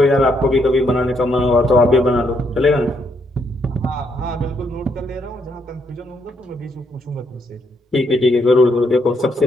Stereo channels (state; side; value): normal; both; correlation 0.75